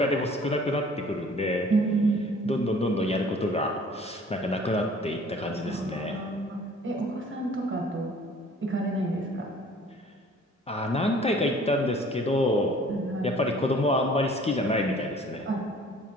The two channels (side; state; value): both; normal; correlation 0.52